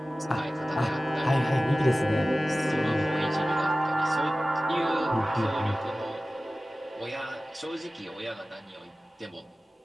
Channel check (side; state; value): both; normal; correlation 0.96